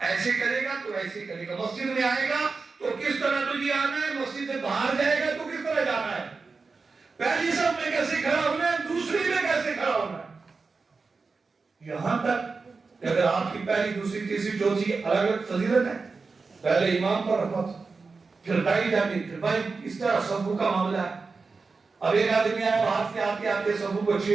کرے گا تو ایسے کرے گا، مسجد میں آئے گا تو کس طرح تجھے آنا ہے، مسجد سے باہر جائے گا تو کس طرح جانا ہے، پہلی صف میں کیسے کھڑا ہونا ہے، دوسری میں کیسے کھڑا ہونا ہے، یہاں تک کہ اگر آپ کی پہلی دوسری تیسری چوتھی الگ الگ فضیلت ہے، پہلے امام پر رحمت، پھر بھائی جاتی، پھر بھائی، اس طرح صفوں کا معاملہ ہے۔ اب ایک آدمی آیا باہر سے آتے آتے صفوں کو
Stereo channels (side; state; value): left; quieter; 4.3 dB